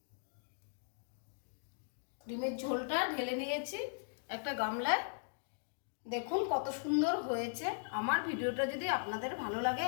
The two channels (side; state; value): right; silent; digital silence